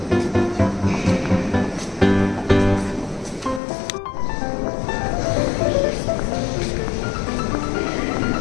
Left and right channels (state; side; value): drops out; right; at 3.6 s